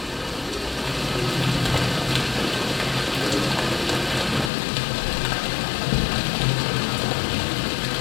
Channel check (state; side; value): drops out; right; at 4.5 s